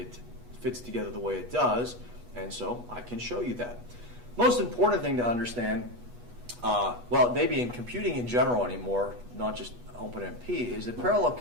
fits together the way it does, and so I can show you that. Most important thing to understand, well, maybe in computing in general anymore, not just OpenMP, is that parallel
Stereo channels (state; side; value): late; left; 8.2 ms